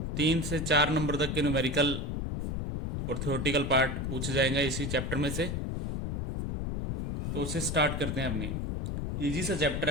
3 से 4 नंबर तक के न्यूमेरिकल और थ्योरेटिकल पार्ट पूछे जाएंगे इसी चैप्टर में से। तो उसे स्टार्ट करते हैं। अपनी इजी सा चैप्टर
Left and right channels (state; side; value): noise; left; rumble, 1 dB below the sound